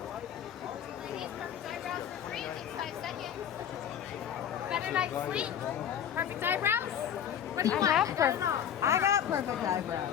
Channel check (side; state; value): right; quieter; 9.3 dB